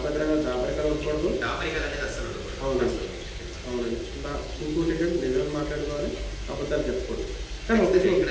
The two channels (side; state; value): both; identical; correlation 1.00